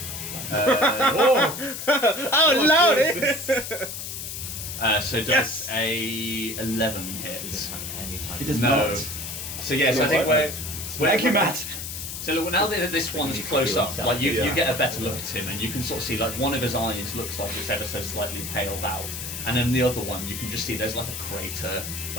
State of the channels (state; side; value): noise; left; hiss, 7 dB below the sound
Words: Oh, lordy! So does Yes. a 11 hit? It does No. not. So yes, I think What? where Thank you, Matt. So look, now that this one's close up, like you get a better look at him, and you can sort of see like one of his eyes looks like it's ever so slightly paled out, and then the other one you can just see there's like a crater